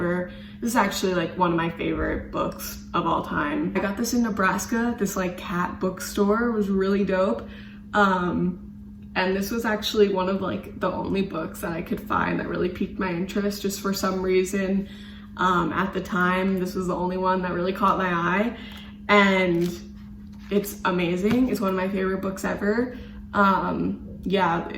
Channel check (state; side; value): identical; both; correlation 1.00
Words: This is actually like one of my favorite books of all time. I got this in Nebraska. This like cat bookstore was really dope. And this was actually one of like the only books that I could find that really piqued my interest just for some reason. At the time, this was the only one that really caught my eye. And it's amazing. It's one of my favorite books ever. Yeah,